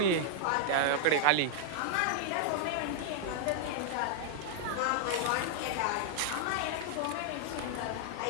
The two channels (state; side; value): different; both; correlation -0.01